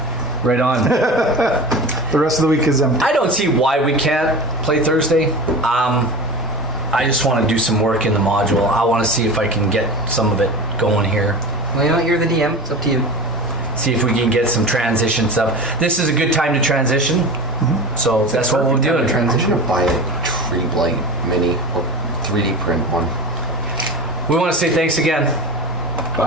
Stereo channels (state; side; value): normal; both; correlation 0.30